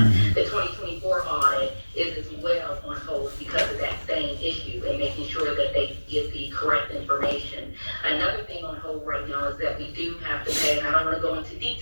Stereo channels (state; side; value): inverted; both; correlation -1.00